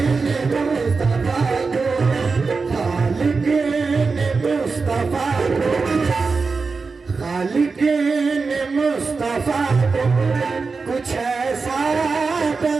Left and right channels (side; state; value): left; quieter; 4.5 dB